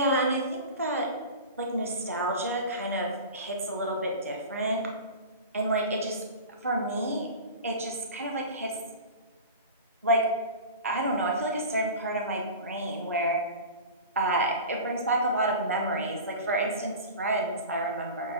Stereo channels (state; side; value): inverted; both; correlation -0.32